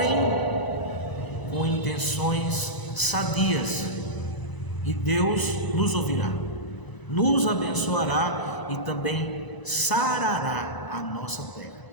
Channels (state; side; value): late; right; 1.0 ms